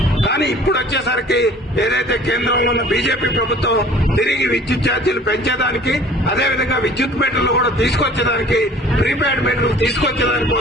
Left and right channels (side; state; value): both; normal; correlation 0.49